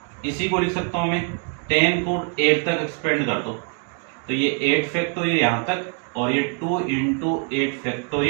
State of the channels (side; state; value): left; quieter; 38.4 dB